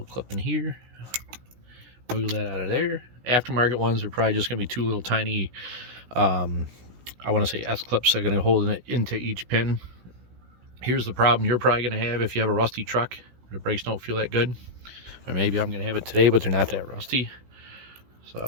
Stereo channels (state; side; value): late; left; 16 ms